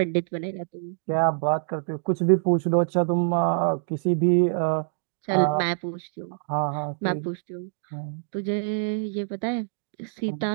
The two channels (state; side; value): silent; left; digital silence